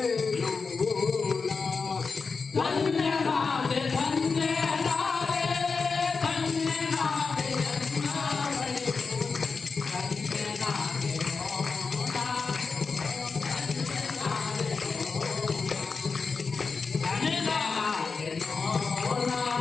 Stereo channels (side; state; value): right; quieter; 4.8 dB